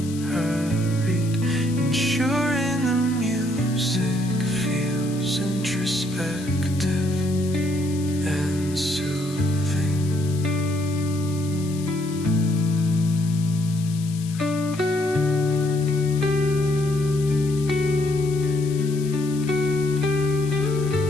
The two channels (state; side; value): noise; left; hiss, 16 dB below the sound